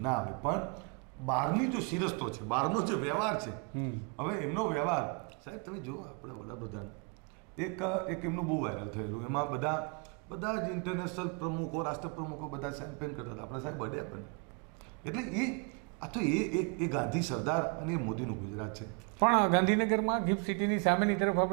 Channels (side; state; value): left; quieter; 33.2 dB